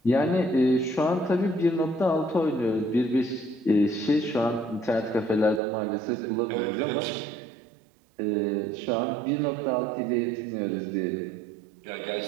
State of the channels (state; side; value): drops out; left; at 5.6 s